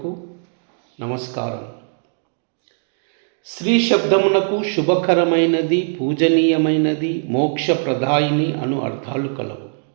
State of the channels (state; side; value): silent; left; digital silence